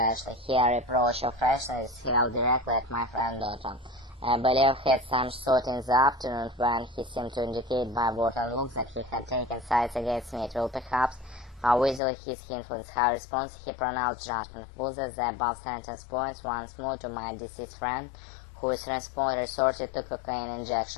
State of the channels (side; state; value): right; drops out; at 12.0 s